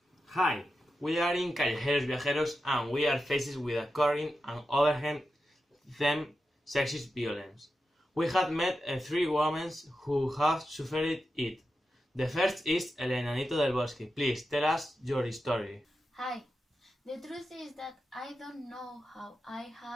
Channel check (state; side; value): normal; both; correlation 0.90